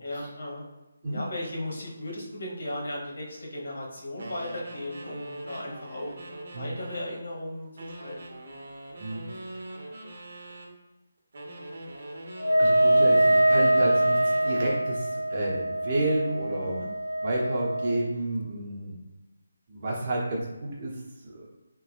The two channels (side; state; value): both; inverted; correlation -0.95